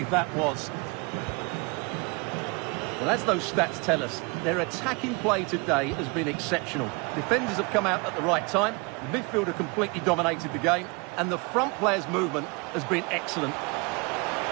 that was. Well, as those stats tell us, their attacking play today has been exceptional. Defenders have come out at the right time. Midfield have completely dominated the game. And the front player's movement has been excellent.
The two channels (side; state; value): left; quieter; 29.3 dB